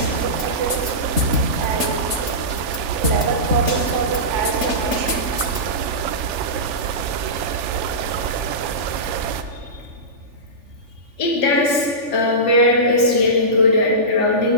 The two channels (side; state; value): left; late; 3.4 ms